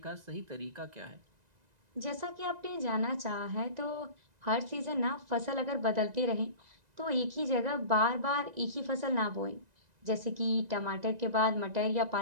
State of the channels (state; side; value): late; left; 1.9 ms